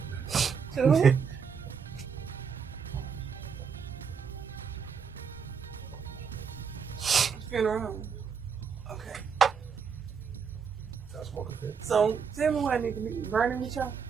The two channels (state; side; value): quieter; left; 6.4 dB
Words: Two? there. Funeral home. Okay. I smoke a fit. So tell me what I need to be burning with y'all.